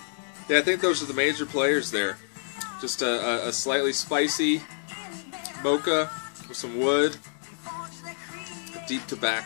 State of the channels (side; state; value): right; silent; digital silence